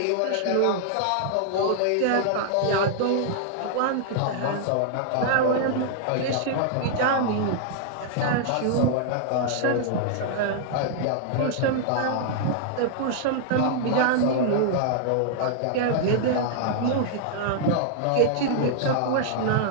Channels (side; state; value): both; different; correlation -0.01